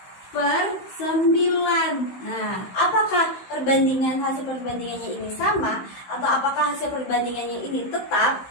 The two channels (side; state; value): right; late; 16 ms